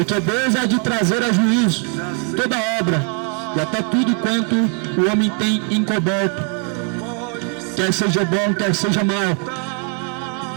Deus há de trazer a juízo toda obra e até tudo quanto o homem tem encoberto, quer seja bom, quer seja mal.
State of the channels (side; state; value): left; quieter; 39.9 dB